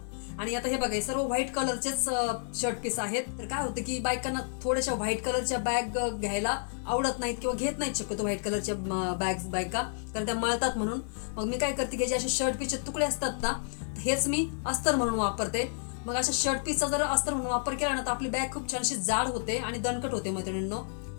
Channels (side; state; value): right; silent; digital silence